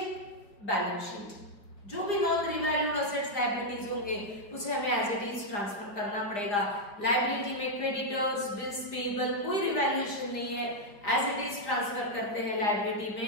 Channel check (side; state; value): right; late; 4.7 ms